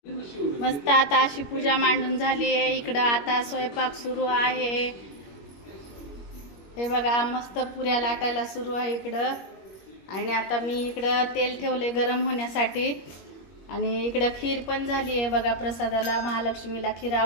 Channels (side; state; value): right; late; 21 ms